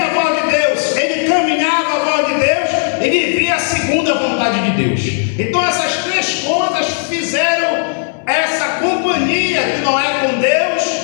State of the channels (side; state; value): right; silent; digital silence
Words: a voz de Deus, ele caminhava a voz de Deus e vivia segundo a vontade de Deus. Então essas três coisas fizeram essa companhia de Noé com